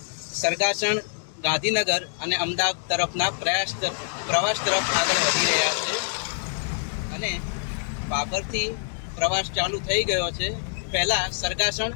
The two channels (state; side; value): silent; right; digital silence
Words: સરગાસણ, ગાંધીનગર અને અમદાવાદ તરફના પ્રવાસ તરફ આગળ વધી રહ્યા છે. અને પાભરથી પ્રવાસ ચાલુ થઈ ગયો છે. પહેલાં સરગાસણ,